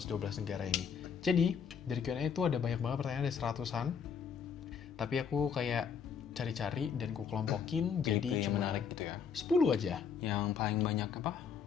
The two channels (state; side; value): quieter; right; 6.8 dB